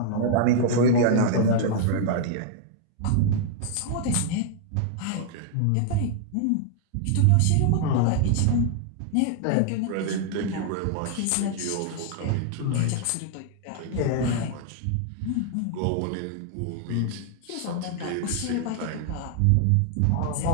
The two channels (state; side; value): different; both; correlation -0.01